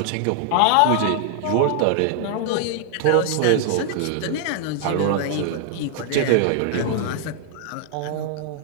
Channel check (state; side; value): different; both; correlation 0.00